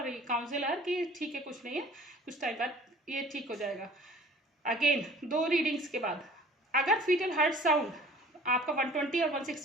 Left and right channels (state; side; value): normal; both; correlation 0.49